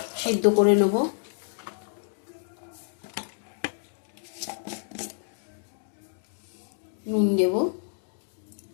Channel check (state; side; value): silent; right; digital silence